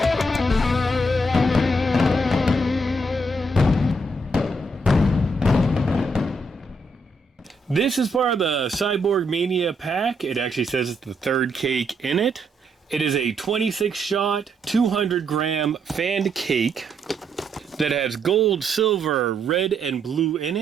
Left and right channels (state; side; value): normal; both; correlation 0.75